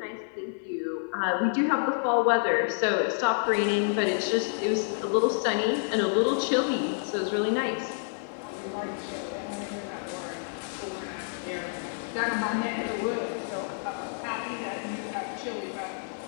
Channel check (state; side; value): silent; right; 56 dB below the other